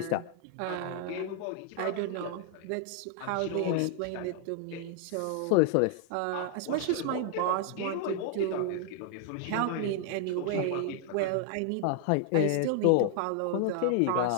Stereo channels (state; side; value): different; both; correlation 0.00